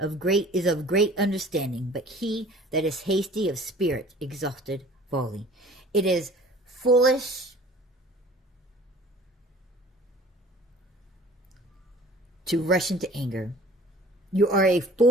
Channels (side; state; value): both; normal; correlation 0.48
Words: of great understanding, but he that is hasty of spirit exalted folly. It is foolish to rush into anger. You are a